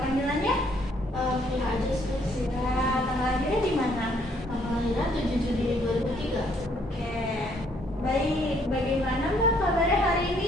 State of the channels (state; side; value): normal; both; correlation 0.67